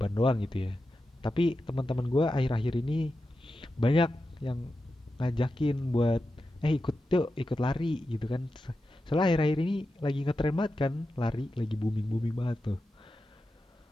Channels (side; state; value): both; normal; correlation 0.90